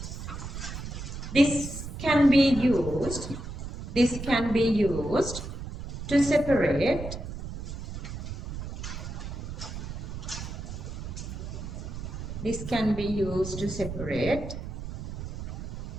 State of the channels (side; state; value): right; noise; rumble, 7 dB below the sound